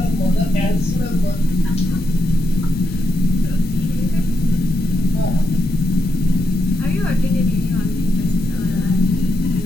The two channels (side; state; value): right; noise; hum, 25 dB below the sound